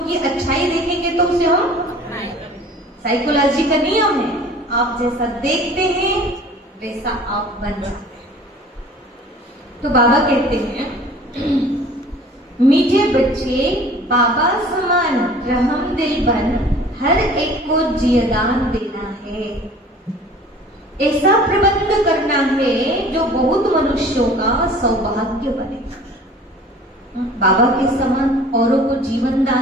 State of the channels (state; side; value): normal; both; correlation 0.47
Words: अच्छाई देखेंगे तो उसे हम, साइकोलॉजी का नियम है, आप जैसा देखते हैं वैसा आप बन जाते हैं। तो बाबा कहते हैं मीठे बच्चे बाबा समान रहम दिल बन, हर एक को जियदान देना है। ऐसा प्रबंध करना है जो बहुत मनुष्यों का सौभाग्य बने। बाबा के समान औरों को जीवन